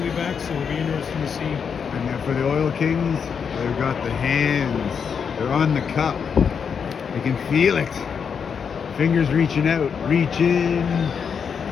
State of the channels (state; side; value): quieter; right; 6.6 dB